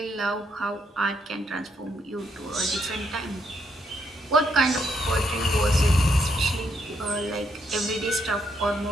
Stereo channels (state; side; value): normal; both; correlation 0.76